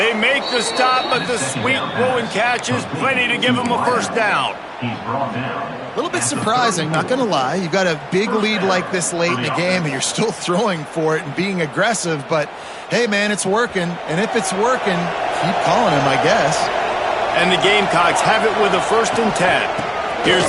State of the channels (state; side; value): identical; both; correlation 1.00